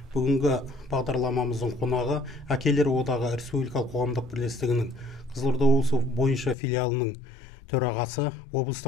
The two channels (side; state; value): right; drops out; at 6.6 s